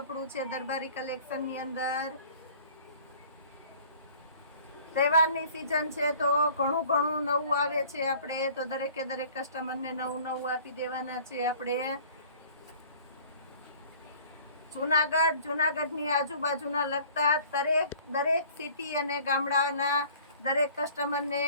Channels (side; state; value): both; inverted; correlation -0.50